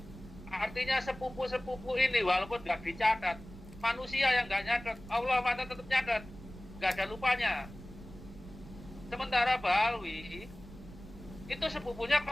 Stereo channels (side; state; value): right; noise; rumble, 16 dB below the sound